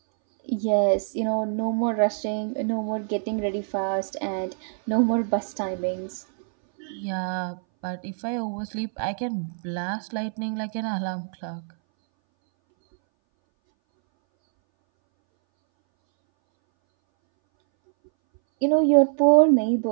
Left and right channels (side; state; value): left; silent; 60 dB below the other